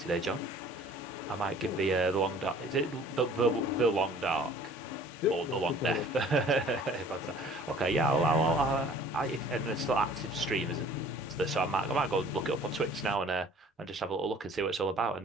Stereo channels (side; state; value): both; normal; correlation 0.51